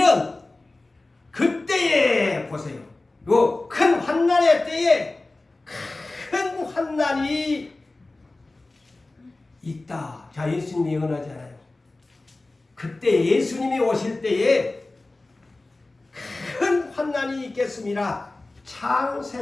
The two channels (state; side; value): quieter; right; 3.1 dB